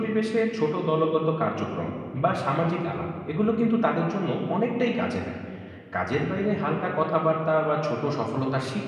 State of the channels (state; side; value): identical; both; correlation 1.00